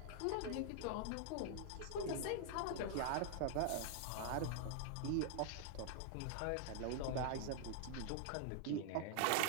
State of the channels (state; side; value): different; both; correlation 0.00